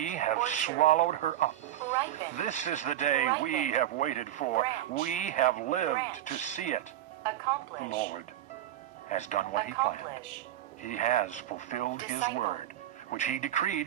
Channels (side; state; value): left; quieter; 12.5 dB